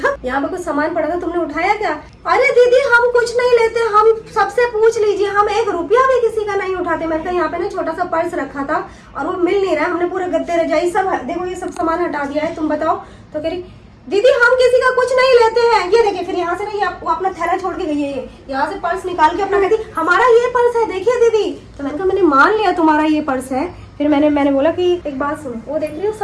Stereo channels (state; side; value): identical; both; correlation 1.00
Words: यहाँ पे कुछ सामान पड़ा था तुमने उठाया क्या? अरे दीदी हम कुछ नहीं लेते, हम सबसे पूछ लीजिए, हम 1 रुपया भी किसी का नहीं उठाते। मैंने कहा यहाँ पे ना छोटा सा पर्स रखा था और वो मिल नहीं रहा है, हमने पूरे गद्दे रजाई सब देखो ये सब सामान हटा दिया है, तुम बताओ। तो कह रही दीदी हम किसी का कुछ नहीं लेते हैं, ये देखिए। फिर यहाँ से ना ये वो अपना थैला छोड़ के गई है, यहाँ से पर्स निकाल के अपना कहती हमारा ये पर्स है देखिए दीदी। तो मैंने कहा मैंने मान लिया तुम्हारा ये पर्स है। फिर मैंने बोला कि एक बात सुनो, वो देख रही हो